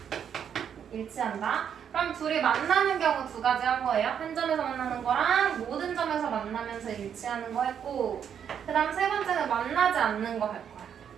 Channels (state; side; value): quieter; left; 8.3 dB